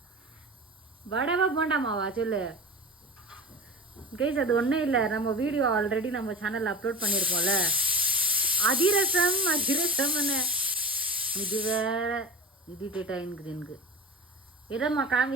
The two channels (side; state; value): both; normal; correlation 0.32